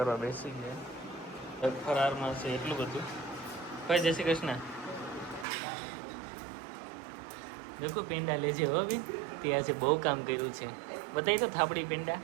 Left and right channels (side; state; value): left; drops out; at 5.5 s